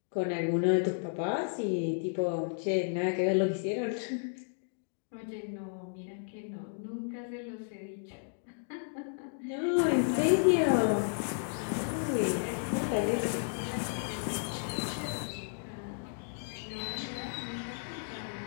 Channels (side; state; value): right; silent; digital silence